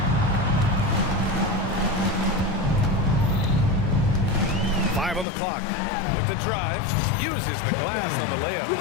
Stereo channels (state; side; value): drops out; right; at 5.2 s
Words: Five on the clock. With the drive, uses the glass on the layup.